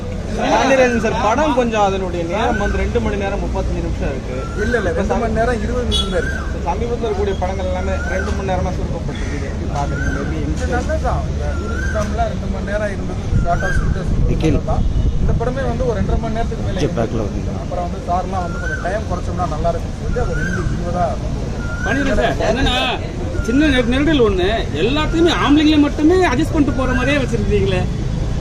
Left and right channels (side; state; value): both; identical; correlation 1.00